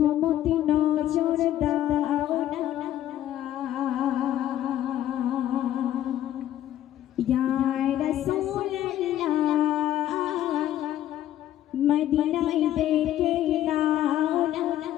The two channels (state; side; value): quieter; right; 12.4 dB